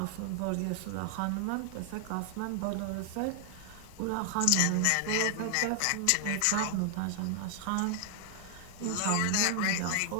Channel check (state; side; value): different; both; correlation 0.00